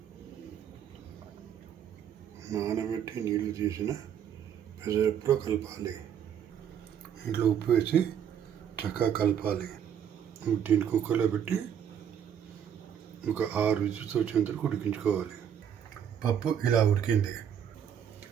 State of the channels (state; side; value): quieter; left; 8.8 dB